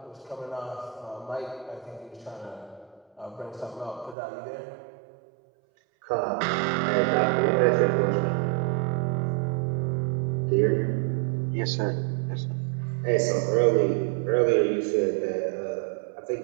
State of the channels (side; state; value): left; drops out; at 4.2 s